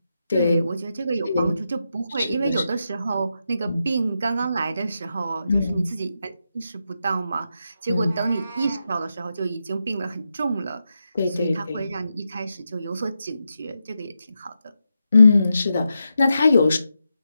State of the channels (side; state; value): both; inverted; correlation -0.87